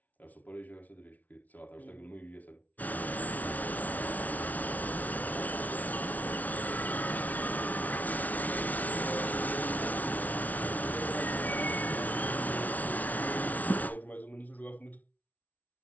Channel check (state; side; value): late; right; 0.075 ms